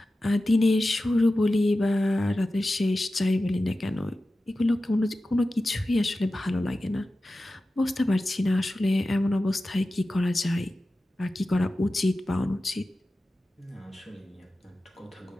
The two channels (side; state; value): both; normal; correlation 0.94